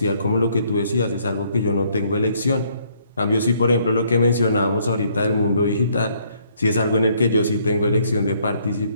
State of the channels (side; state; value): both; inverted; correlation -0.67